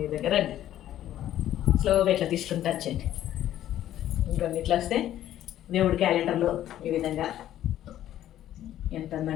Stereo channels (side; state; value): right; quieter; 12.3 dB